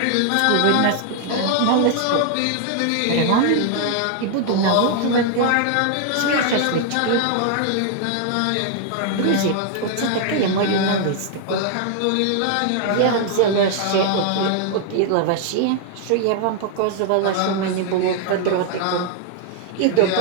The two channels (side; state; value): both; different; correlation 0.00